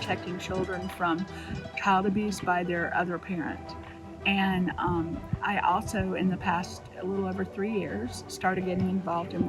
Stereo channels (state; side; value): identical; both; correlation 1.00